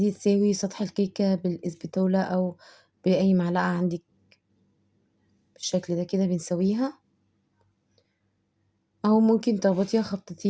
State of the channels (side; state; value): both; identical; correlation 1.00